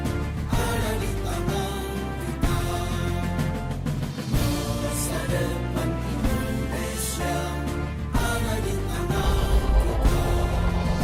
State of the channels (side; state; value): both; identical; correlation 1.00